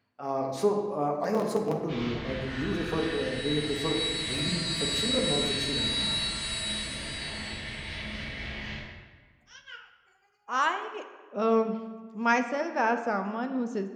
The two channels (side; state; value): both; identical; correlation 1.00